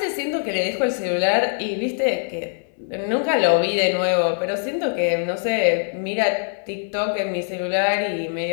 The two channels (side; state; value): right; silent; 64 dB below the other